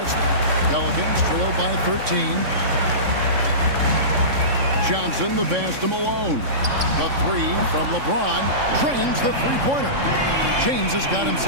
spot. Pelicans trail by 13. Johnson, the pass to Malone. The 3 from LeBron drains the three-pointer. James has got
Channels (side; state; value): left; late; 3.6 ms